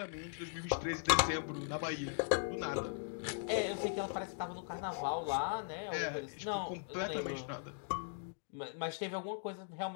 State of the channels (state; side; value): silent; right; digital silence